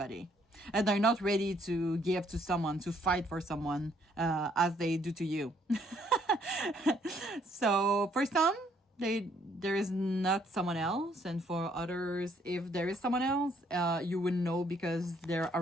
and they're not ready to give to someone, to fight for someone as they do to you. So for some, there is not someone else, and for others, if there is someone else, you would know because they're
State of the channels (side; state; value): both; normal; correlation 0.67